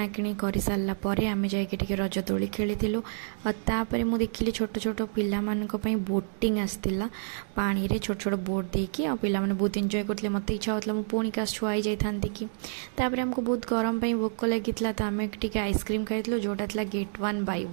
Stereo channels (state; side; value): silent; left; digital silence